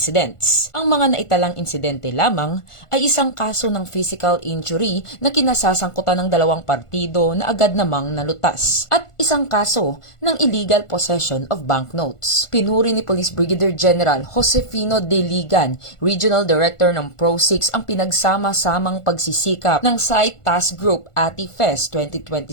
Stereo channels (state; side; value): late; right; 1.5 ms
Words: Ang mga naitalang insidente lamang ay isang kaso ng physical injury na kinasasangkutan ng dalawang partido na agad namang nalutas at isang kaso ng illegal possession of banknotes. Pinuri ni Police Brigadier General Josefino De Ligan, Regional Director ng Pro-6, ang pinagsama-samang pagsisikap ng Site Task Group Ati-Fest